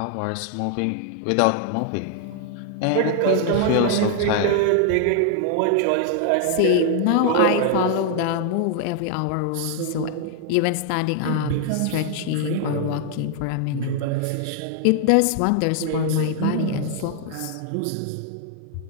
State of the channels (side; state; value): both; different; correlation 0.00